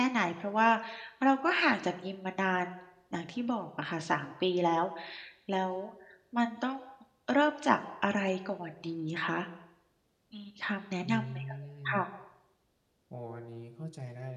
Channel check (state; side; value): identical; both; correlation 1.00